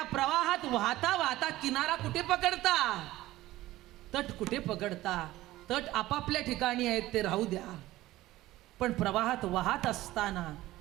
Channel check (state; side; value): quieter; left; 16.6 dB